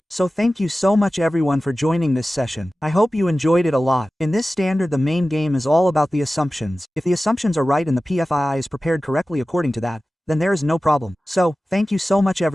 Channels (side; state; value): both; normal; correlation 0.96